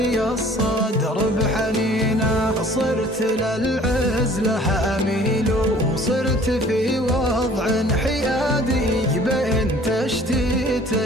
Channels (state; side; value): normal; both; correlation 0.52